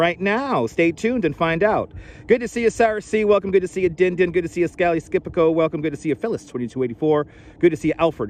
now. Stay tuned and find out. Good to see you, Sarah C. Welcome. Good to see you, Din Din. Good to see you, Scally Skipico. Welcome. Good to see you, Phyllis 2284. Good to see you,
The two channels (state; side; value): identical; both; correlation 1.00